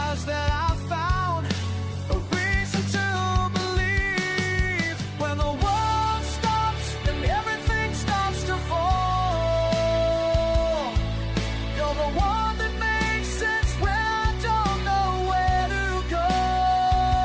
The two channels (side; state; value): both; identical; correlation 1.00